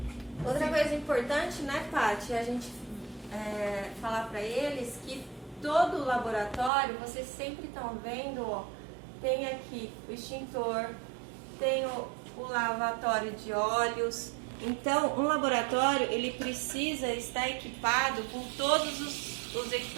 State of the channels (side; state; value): left; drops out; at 6.7 s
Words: Outra coisa importante, né, Paty, é a gente falar para eles que todo o laboratório, vocês sempre estão vendo, ó, tem aqui o extintor, tem o lavatório de óleos. Então, um laboratório, ele precisa estar equipado com todos os